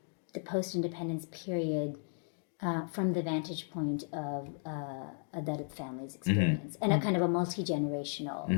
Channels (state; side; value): silent; right; 55 dB below the other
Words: the post-independence period from the vantage point of a Dalit family's experience. And a kind of a